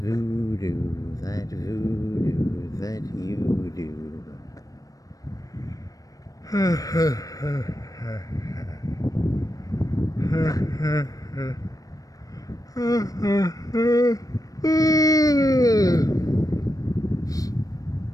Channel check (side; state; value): right; late; 0.17 ms